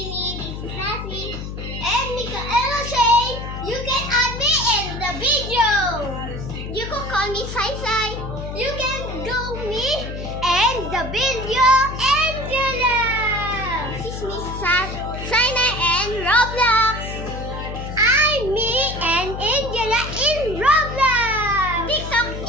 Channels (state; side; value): noise; left; hum, 7 dB below the sound